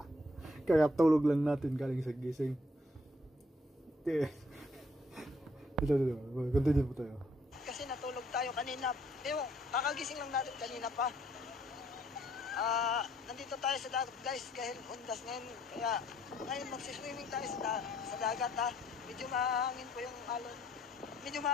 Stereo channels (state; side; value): normal; both; correlation 0.66